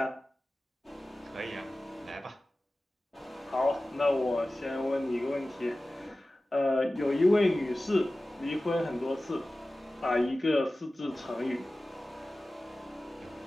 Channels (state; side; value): normal; both; correlation 0.96